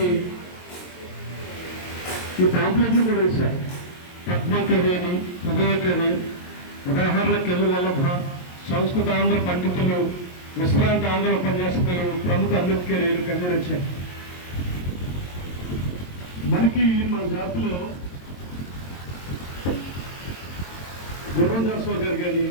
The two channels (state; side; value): late; right; 22 ms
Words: ఈ పాంప్లెట్లు కూడా వేశారు. పద్మకవి అని, హృదయకవి, ఉదాహరణ కవి వల్లభ, సంస్కృత ఆంధ్ర పండితులు, విశ్రాంత ఆంధ్ర ఉపన్యాసకులు, ప్రముఖ అంబేద్కర్ కవి రచన. మనకి మన జాతిలో గుర్రందాస్ గారు కానీ,